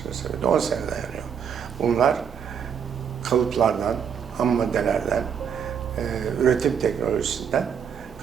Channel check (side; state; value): left; quieter; 7.6 dB